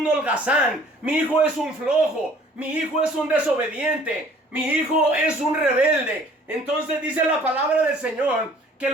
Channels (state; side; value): normal; both; correlation 0.54